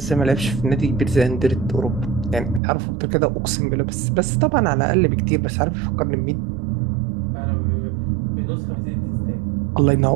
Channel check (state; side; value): drops out; left; at 2.6 s